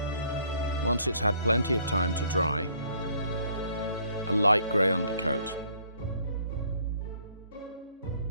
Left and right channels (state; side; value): inverted; both; correlation -0.62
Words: Once it's had plenty of time to dry, a light grey undercoat.